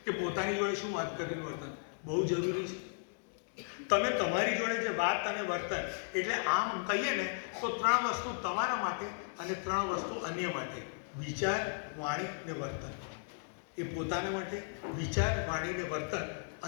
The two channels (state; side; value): silent; right; digital silence